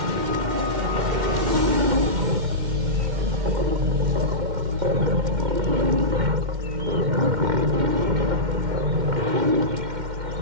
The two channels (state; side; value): late; left; 2.1 ms